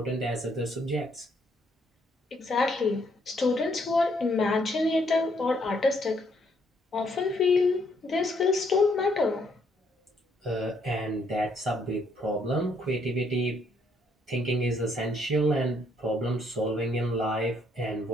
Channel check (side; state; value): both; normal; correlation 0.70